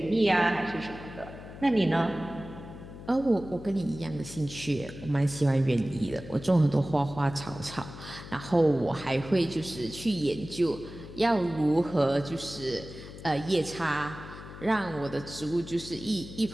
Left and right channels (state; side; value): noise; left; hum, 14 dB below the sound